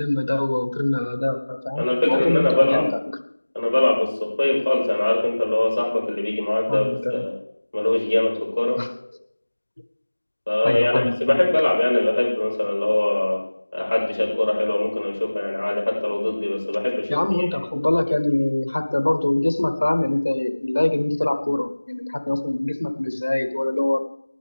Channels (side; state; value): both; inverted; correlation -1.00